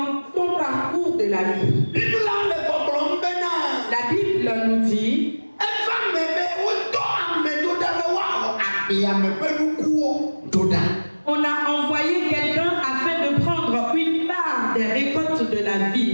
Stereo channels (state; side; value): inverted; both; correlation -1.00